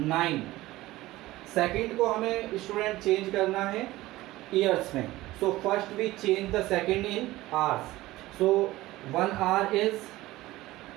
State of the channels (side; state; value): left; quieter; 17.6 dB